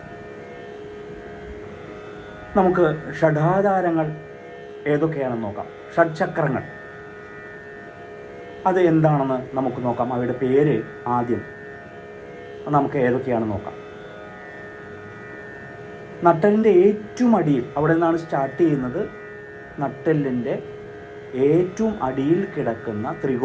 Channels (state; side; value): identical; both; correlation 1.00